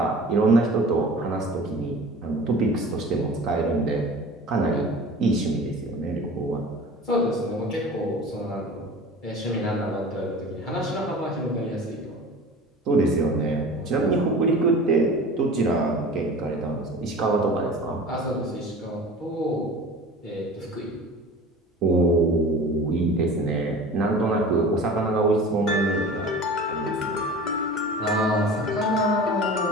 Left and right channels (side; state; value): both; normal; correlation 0.38